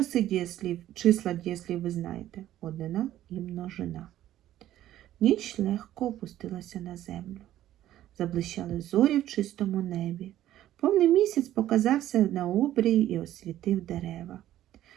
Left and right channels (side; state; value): left; quieter; 13.0 dB